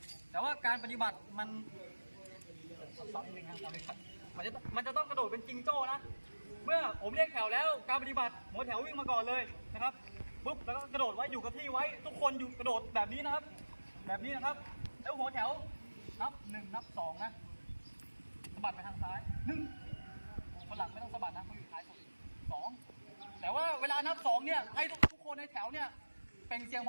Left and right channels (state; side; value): inverted; both; correlation -1.00